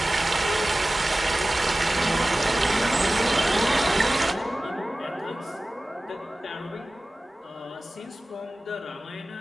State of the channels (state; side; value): normal; both; correlation 0.96